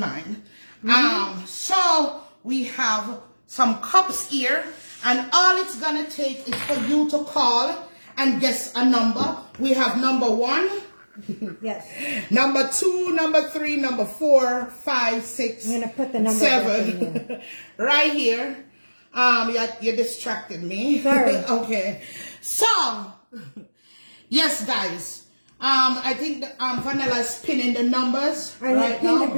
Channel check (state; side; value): inverted; both; correlation -1.00